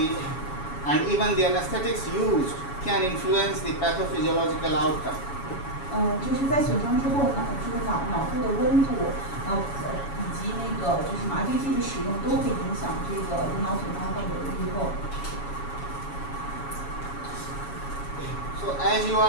and even the anesthetics used can influence the pathophysiological outcome. 就是在损伤之后呢，这个脑部的温度，以及那个就是麻醉剂的使用都会影响这个颅脑损伤患者的预后。So as you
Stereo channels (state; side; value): late; right; 7.2 ms